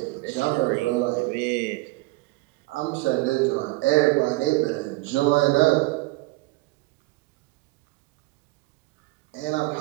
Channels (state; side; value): quieter; left; 21.2 dB